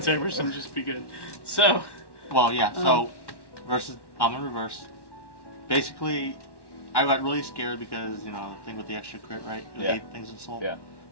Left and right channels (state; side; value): late; right; 1.1 ms